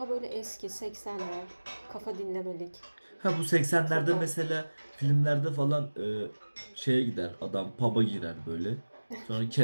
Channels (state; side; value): inverted; both; correlation -1.00